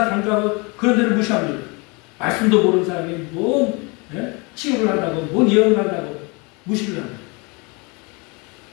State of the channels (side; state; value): right; quieter; 29.3 dB